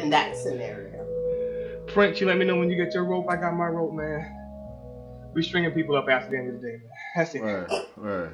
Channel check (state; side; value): identical; both; correlation 1.00